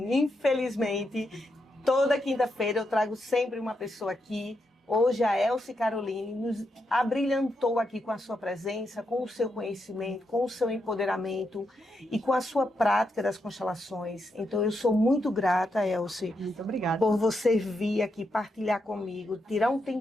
Infelizmente, toda quinta-feira eu trago sempre uma pessoa aqui. Hoje a Elci Caroline nos abrilhantou aqui com a sua presença, com o seu conhecimento, com o seu empoderamento e com a sua prática das constelações. Então eu sou muito grata, Elci. Muito obrigada. Por você vir aqui partilhar comigo, tirar um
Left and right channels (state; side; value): normal; both; correlation 0.83